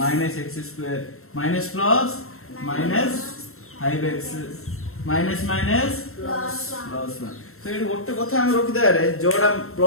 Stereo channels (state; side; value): late; right; 0.62 ms